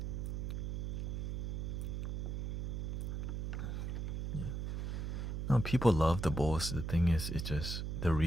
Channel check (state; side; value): noise; right; hum, 2 dB below the sound